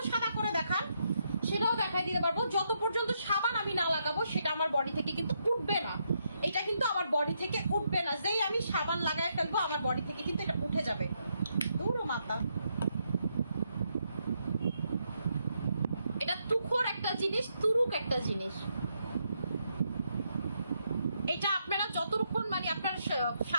সাদা করে দেখান সেটাও দেখাই দিতে পারবো। যত পর্যন্ত সাবান আমি না লাগাবো সেটা আমার বডি থেকে কিন্তু উঠবে না, এটা কিন্তু আমার বডি থেকে উঠবে না। যেই আমি সাবান লাগায় ফেলবো আমার বডি থেকে কিন্তু এটা উঠে যাবে। দূর মাতা, এটা তুখোর একটা জিনিস, তুরুক একটা জিনিস। এটা আপনারা যতক্ষণ মানে আপনার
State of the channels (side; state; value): both; inverted; correlation -0.78